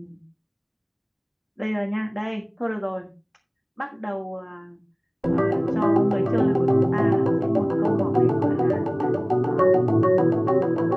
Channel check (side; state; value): both; identical; correlation 1.00